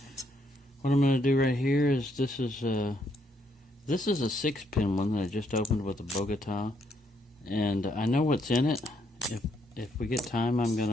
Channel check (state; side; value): normal; both; correlation 0.73